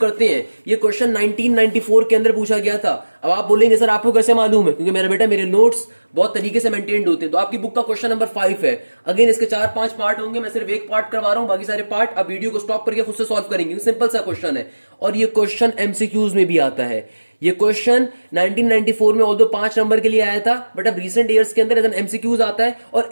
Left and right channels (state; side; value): inverted; both; correlation -1.00